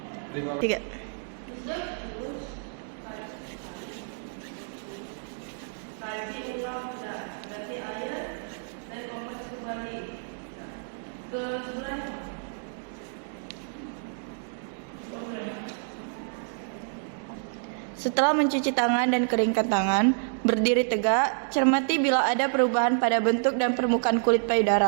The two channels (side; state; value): left; silent; digital silence